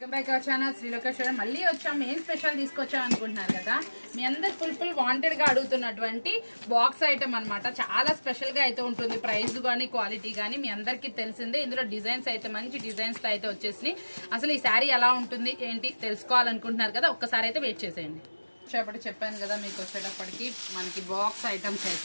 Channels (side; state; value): both; inverted; correlation -1.00